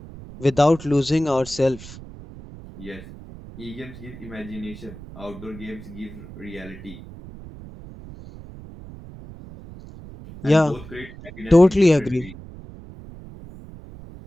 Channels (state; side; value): noise; right; rumble, 16 dB below the sound